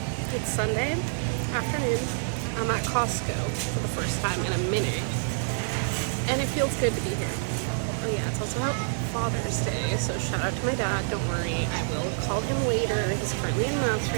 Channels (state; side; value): silent; left; digital silence